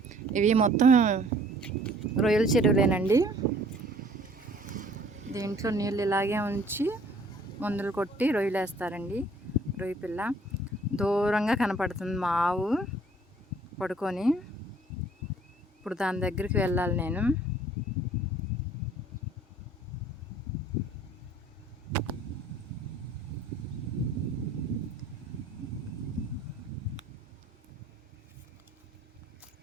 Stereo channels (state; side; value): normal; both; correlation 0.56